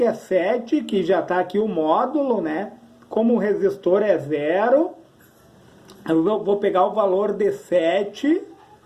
é 7, que já está aqui o módulo, né? Como o resistor é 0, eu vou pegar o valor de 7,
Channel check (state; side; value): identical; both; correlation 1.00